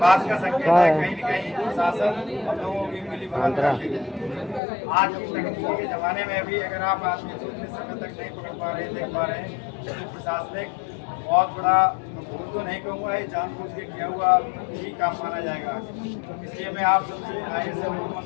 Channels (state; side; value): drops out; right; at 4.6 s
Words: का संकेत है कहीं न कहीं प्रशासन हम लोगों की मिली भगत आज की तकनीकी के जमाने में भी अगर आप आदमी को इतने समय तक नहीं पकड़ पा रहे, देख पा रहे हैं, तो प्रशासनिक बहुत बड़ा भूल तो नहीं कहूँगा, ये जानबूझ के किया हुआ ही काम माना जाएगा। इसलिए मैं आप सबसे आए से लोगों